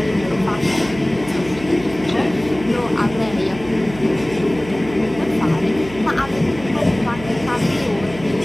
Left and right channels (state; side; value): noise; right; hum, 15 dB below the sound